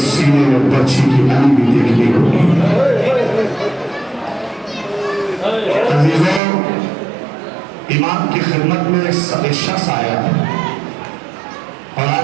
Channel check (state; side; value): drops out; left; at 6.4 s